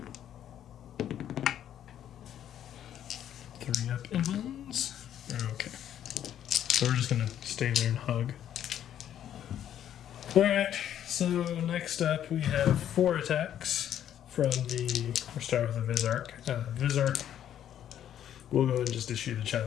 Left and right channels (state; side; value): quieter; right; 10.5 dB